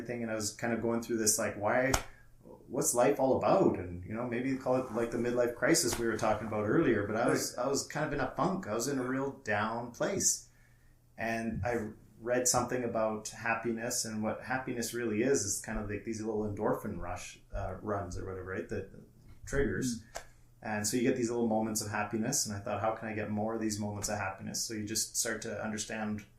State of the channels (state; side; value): identical; both; correlation 1.00